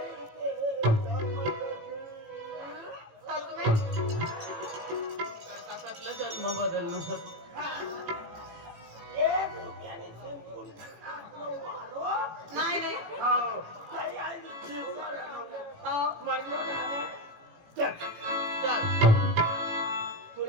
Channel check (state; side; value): late; left; 18 ms